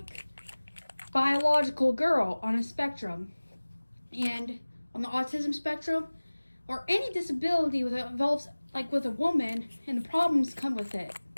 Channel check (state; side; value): inverted; both; correlation -1.00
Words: biological girl on a spectrum, and on the autism spectrum, or any disability that involves like with a woman, and the problems come with it.